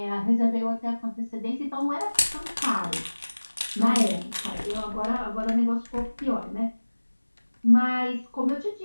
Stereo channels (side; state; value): both; inverted; correlation -1.00